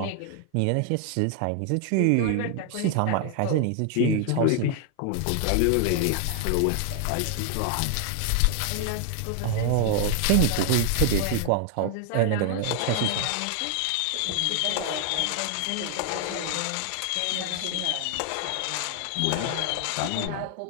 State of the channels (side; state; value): both; different; correlation 0.00